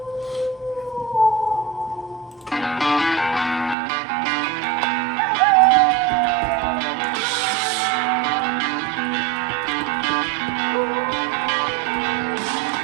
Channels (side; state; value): left; drops out; at 3.8 s